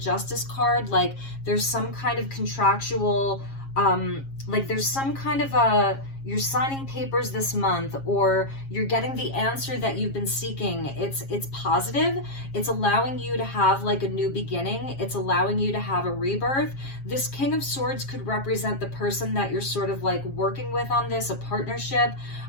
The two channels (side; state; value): right; late; 7.4 ms